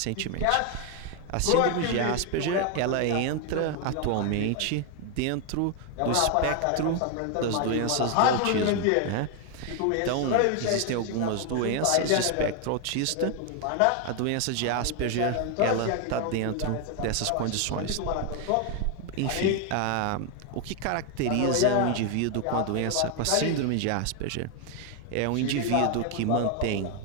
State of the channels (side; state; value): both; different; correlation 0.01